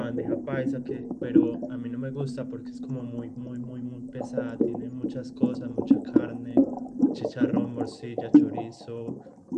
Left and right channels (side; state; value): both; identical; correlation 1.00